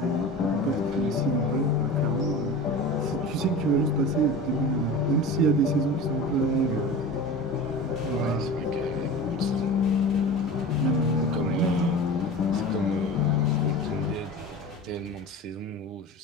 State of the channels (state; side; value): normal; both; correlation 0.33